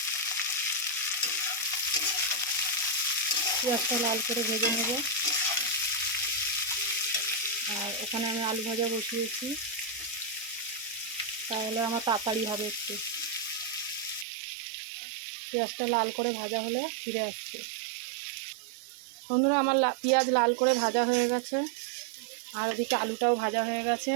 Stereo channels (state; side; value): drops out; left; at 14.2 s